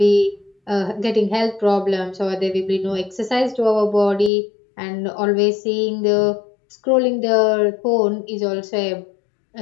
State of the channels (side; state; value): right; drops out; at 4.3 s